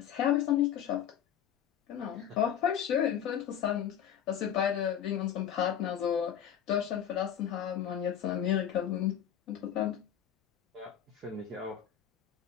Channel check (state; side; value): quieter; right; 9.5 dB